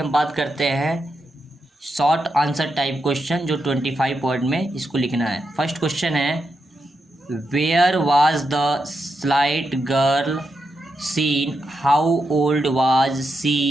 बात करते हैं, शॉर्ट आंसर टाइप क्वेश्चन, जो 25 वर्ड में इसको लिखना है। फर्स्ट क्वेश्चन है, where was the slight girl seen, how old was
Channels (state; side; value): normal; both; correlation 0.85